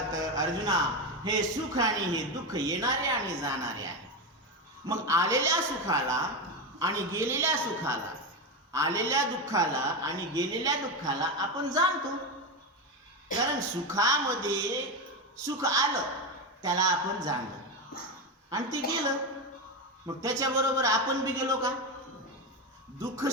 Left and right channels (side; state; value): both; normal; correlation 0.14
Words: अर्जुना, हे सुख आणि हे दुःख येणारे आणि जाणारे आहे. मग आलेल्या सुखाला आणि गेलेल्या सुखाला, आलेल्या दुःखाला आणि गेलेल्या दुःखाला आपण जाणतो. कारण सुखामध्ये सुख आलं त्याला आपण जाणलं आणि ते गेलं. मग त्याच्याबरोबर आपण बी गेलो का? दुःख